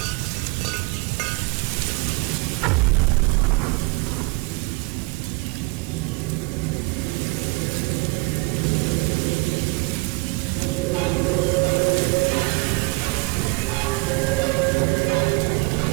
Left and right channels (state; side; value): quieter; left; 28.2 dB